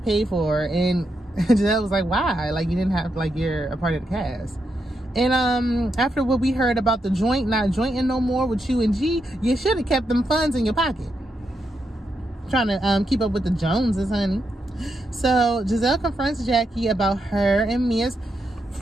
for it. And Giselle was like, why? Like, you didn't have, like, you're a part of the cast. And after what we heard about the joint not jointing no more with you and G, you should have kept them funds in your pocket. Trying to keep up with the Joneses, honey. So Giselle confronts Jackie about her and Mia's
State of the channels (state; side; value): normal; both; correlation 0.83